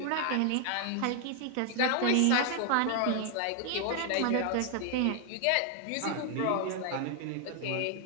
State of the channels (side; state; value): both; different; correlation 0.00